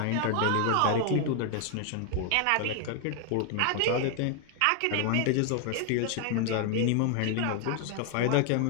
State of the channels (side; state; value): both; different; correlation 0.00